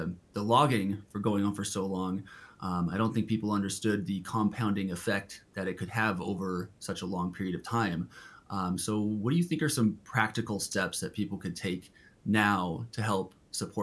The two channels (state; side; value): identical; both; correlation 1.00